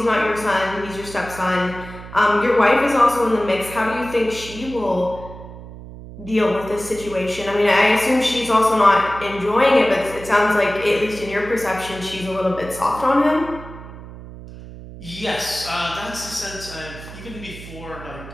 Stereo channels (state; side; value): noise; right; hum, 14 dB below the sound